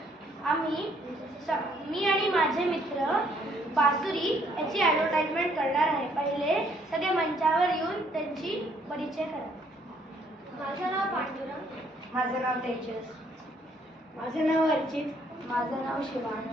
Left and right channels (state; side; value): normal; both; correlation 0.66